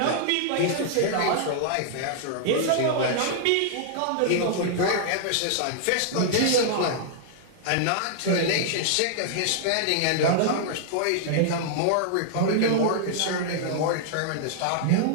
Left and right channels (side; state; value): both; different; correlation -0.01